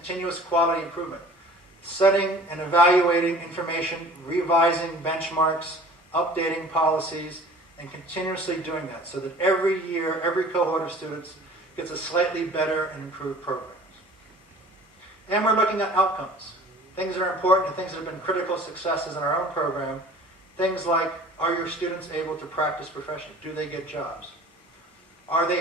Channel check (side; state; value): both; normal; correlation 0.46